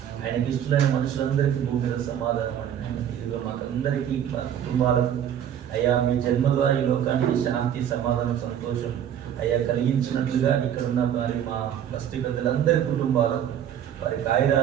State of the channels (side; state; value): left; quieter; 9.8 dB